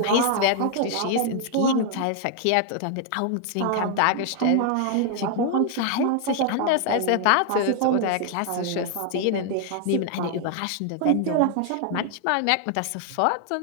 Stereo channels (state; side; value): different; both; correlation 0.00